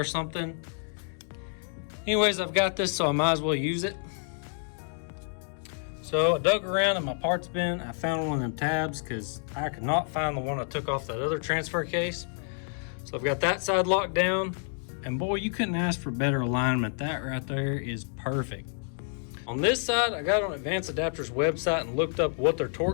something. Anyways, I've got this, so I might as well use it. So I dug around in my parts bin. I found one of them tabs because I could not find the one I took off that other transfer case. So I've got that side locked down, and boy, you couldn't ask for better alignment. That right there is perfect. On this side, I got on Advanced Adapters website and looked up what their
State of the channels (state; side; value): silent; right; 59 dB below the other